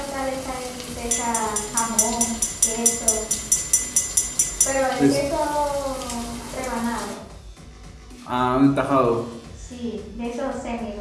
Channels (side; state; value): both; identical; correlation 1.00